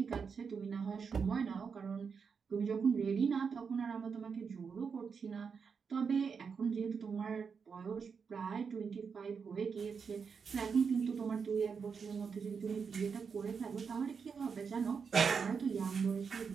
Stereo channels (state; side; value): quieter; left; 5.9 dB